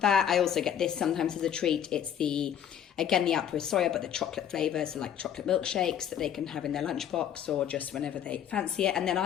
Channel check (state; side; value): quieter; right; 9.5 dB